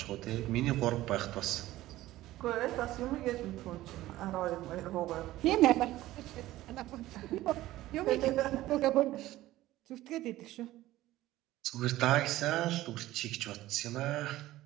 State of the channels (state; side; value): quieter; left; 15.9 dB